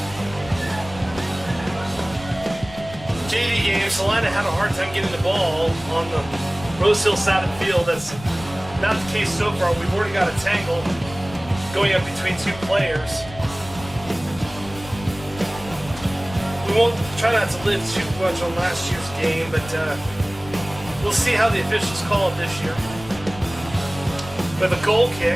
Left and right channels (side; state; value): left; noise; rumble, 16 dB below the sound